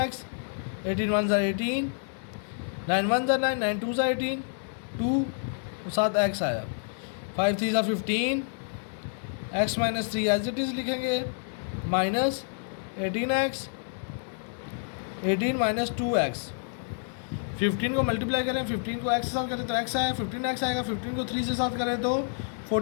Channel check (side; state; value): right; silent; 59 dB below the other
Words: 18 1 18, 9 1 9, 9 2 18, 2 साथ x आया, 5 3 15, x minus 3 as it is लिखेंगे, माइनस 18x, 18 माइनस 2x। 15 को मल्टीप्लाई करें, 15 को x के साथ करें तो x आया, 15x आएगा, 15 को 3 से साथ करें तो